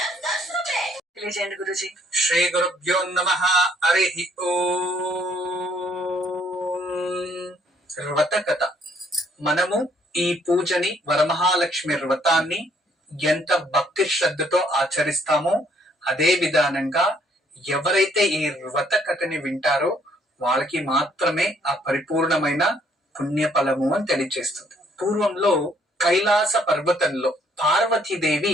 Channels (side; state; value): both; normal; correlation 0.66